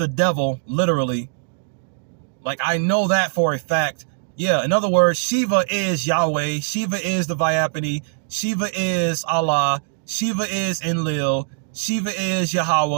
devil, literally. Like, I know that for a fact. Yeah, in other words, Shiva is Yahweh. Shiva is the Vyapani. Shiva is Allah. Shiva is Enlil. Shiva is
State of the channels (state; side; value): silent; left; digital silence